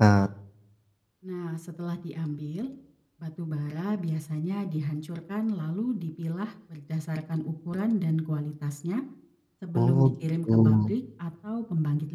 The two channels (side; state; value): both; identical; correlation 1.00